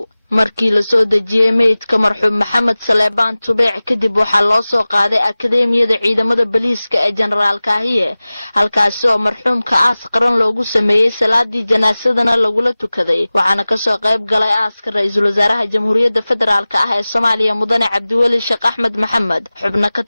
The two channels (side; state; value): both; inverted; correlation -0.98